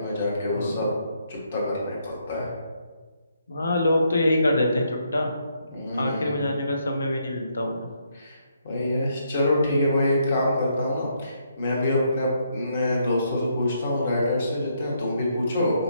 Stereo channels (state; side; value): inverted; both; correlation -0.74